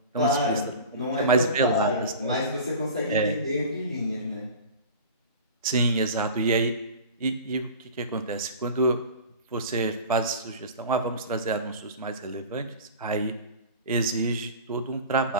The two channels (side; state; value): both; inverted; correlation -0.37